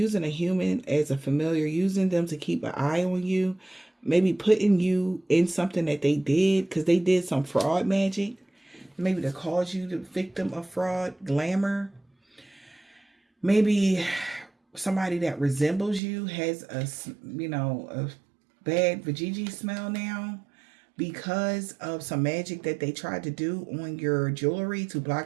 a human as a familiar. Using them to keep an eye on you. Maybe putting you in something that they did. Because they did some fraud magic. Maybe to cause you the victim of fraud, glamour. Maybe somebody that resembles you has a bad vajayjay smell now because of some magic that they tried to do on your jewelry to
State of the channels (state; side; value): drops out; left; at 16.0 s